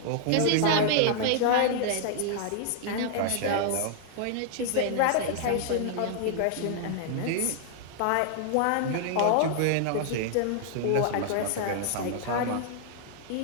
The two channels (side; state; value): both; different; correlation -0.01